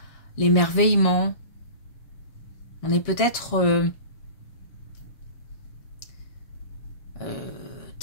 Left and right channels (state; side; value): late; right; 7.3 ms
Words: l'émerveillement. On est peut-être